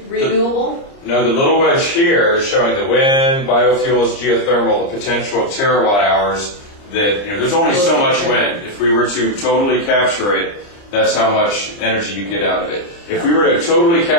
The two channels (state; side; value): late; right; 30 ms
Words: renewable? No, the little wedge here is showing the wind, biofuels, geothermal, the potential of terawatt hours that, there's only so much wind. If we were to totally capture it, that's how much energy you get out of it. If we were to totally